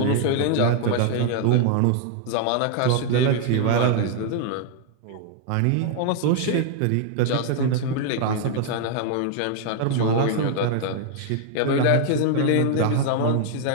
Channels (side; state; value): both; different; correlation 0.00